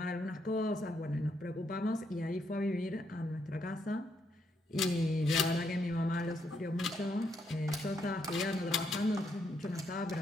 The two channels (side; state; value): both; normal; correlation 0.76